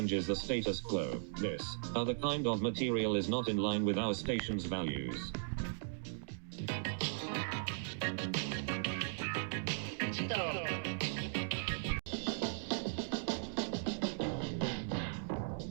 the status quo. This other kind of material is not in line with our station's values.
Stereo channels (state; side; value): silent; left; digital silence